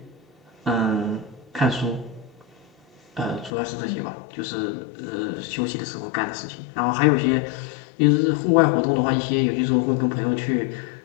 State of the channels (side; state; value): right; drops out; at 3.5 s